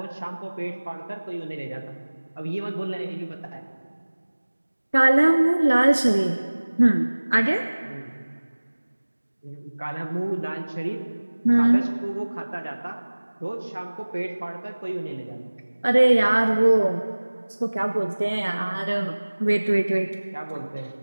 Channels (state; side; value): inverted; both; correlation -1.00